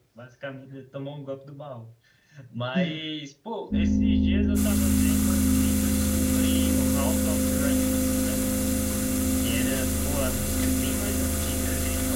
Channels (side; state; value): both; identical; correlation 1.00